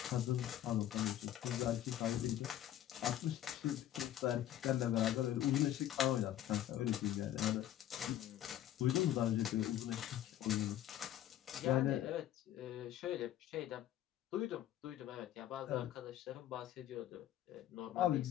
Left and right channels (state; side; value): quieter; right; 12.3 dB